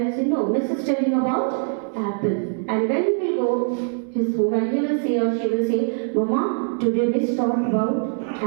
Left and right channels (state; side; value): silent; left; 59 dB below the other